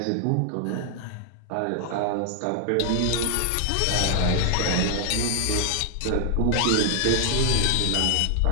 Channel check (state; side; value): different; both; correlation 0.00